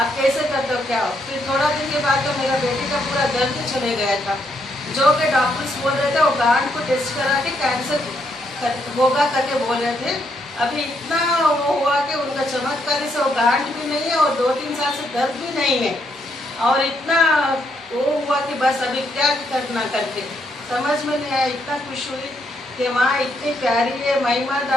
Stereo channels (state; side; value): normal; both; correlation 0.75